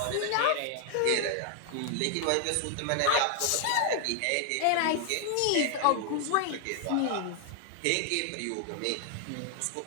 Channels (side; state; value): both; different; correlation 0.00